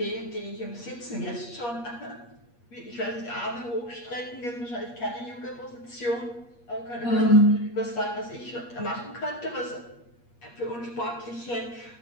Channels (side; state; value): right; late; 8.4 ms